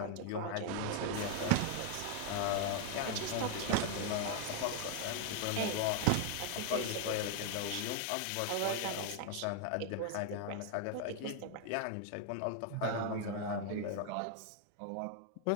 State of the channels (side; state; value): both; different; correlation 0.01